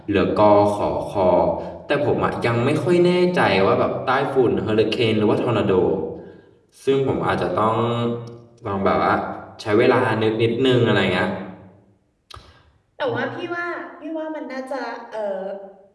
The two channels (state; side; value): identical; both; correlation 1.00